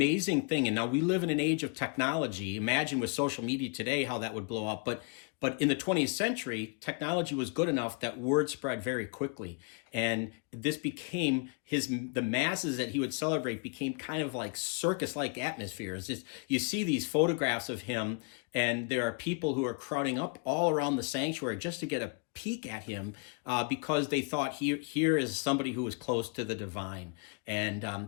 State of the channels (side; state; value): right; quieter; 35.5 dB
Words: thing. And now we live in an age of technology. Imagine with social media today how that would blow up. But in the 20th century, technology was good enough that word spread very quickly. And this became the masses that he would celebrate became kind of like circus-like atmospheres. You see these photographs of him, and there are people who are crowding up all around the sanctuary just to get a peek at him because they thought here is somebody who was close to the divine, and